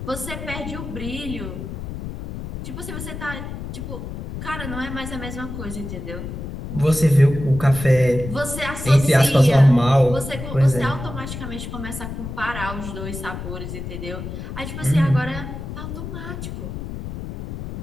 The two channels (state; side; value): noise; left; rumble, 8 dB below the sound